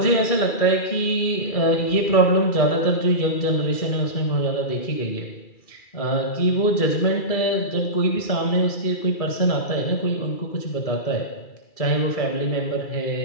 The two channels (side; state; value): right; late; 2.3 ms